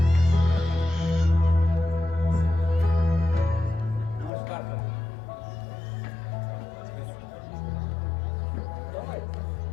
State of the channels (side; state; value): right; drops out; at 4.3 s